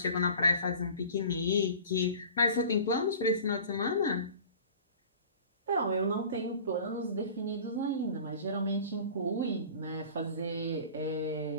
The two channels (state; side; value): inverted; both; correlation -0.42